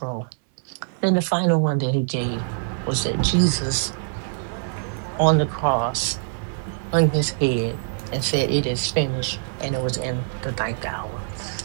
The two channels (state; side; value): silent; left; 63 dB below the other